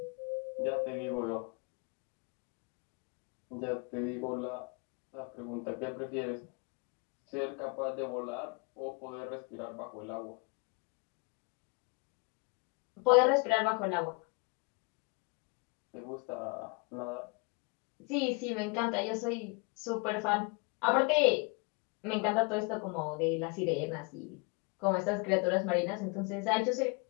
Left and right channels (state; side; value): quieter; right; 32.2 dB